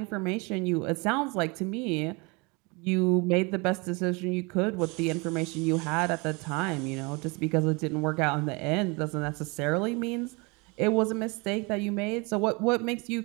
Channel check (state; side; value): quieter; left; 28.6 dB